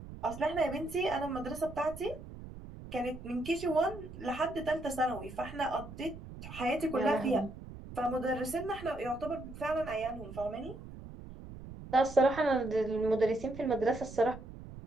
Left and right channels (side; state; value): right; noise; rumble, 13 dB below the sound